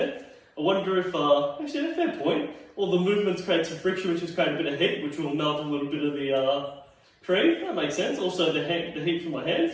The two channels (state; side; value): identical; both; correlation 1.00